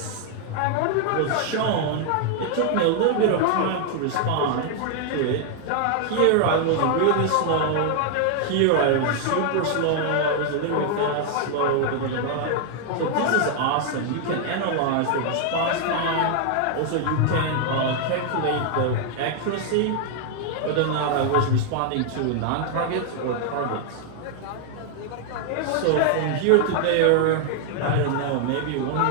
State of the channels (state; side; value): different; both; correlation 0.00